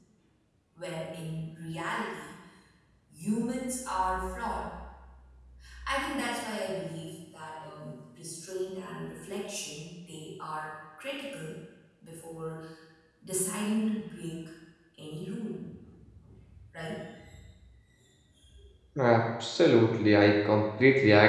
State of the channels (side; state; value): both; identical; correlation 1.00